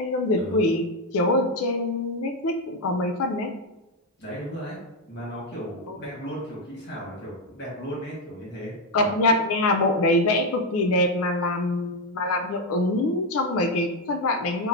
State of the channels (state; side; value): normal; both; correlation 0.05